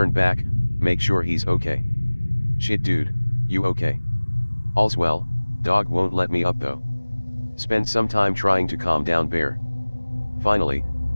back, make sure he's okay. Shit dude, you okay? All's well, dog won't let me up though. Spend some time trying to calm down Bear. Finally,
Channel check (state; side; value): inverted; both; correlation -1.00